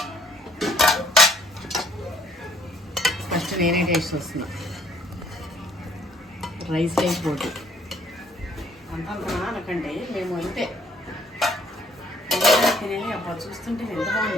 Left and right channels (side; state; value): both; normal; correlation 0.62